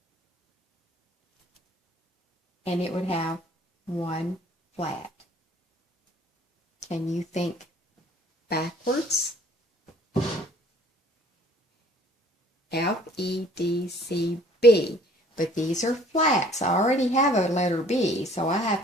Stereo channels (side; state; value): both; normal; correlation 0.55